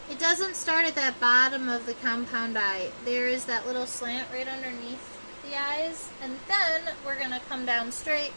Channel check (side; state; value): both; inverted; correlation -1.00